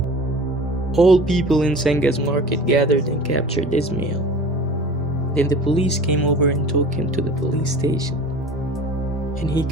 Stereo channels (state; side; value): normal; both; correlation 0.40